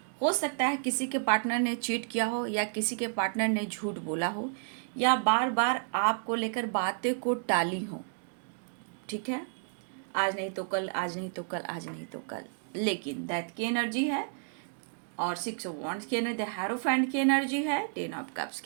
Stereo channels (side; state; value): left; silent; digital silence